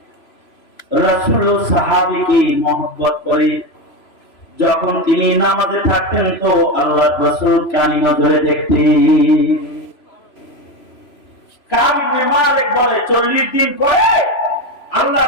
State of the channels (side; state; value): right; late; 3.0 ms